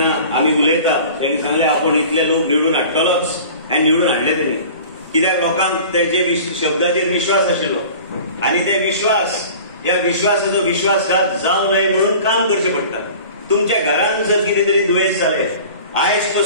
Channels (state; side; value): inverted; both; correlation -0.42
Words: आमी उलयता तेणी सांगलें आपूण इतले लोक निवडून हाडटलोच आनी निवडून हाडले तेणी कित्याक लोकांक तेजे शब्दाचेर विश्वास आशिल्लो आनी ते विश्वास ह्या विश्वासाचो विश्वासघात जावं न्हय म्हणून काम करचें पडटा तुमच्या घरांत जर कितें तरी दुयेंस जालें आयज